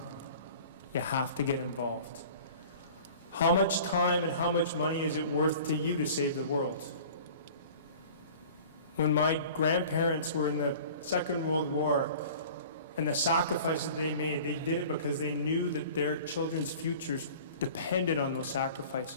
You have to get involved. How much time and how much money is it worth to you to save the world? When my grandparents were in the Second World War and the sacrifices they made, they did it because they knew that their children's futures depended on those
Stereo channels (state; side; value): inverted; both; correlation -0.44